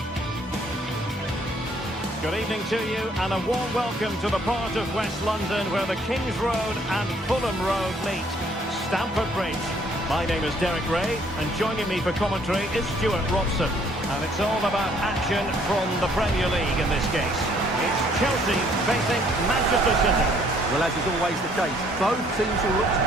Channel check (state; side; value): normal; both; correlation 0.63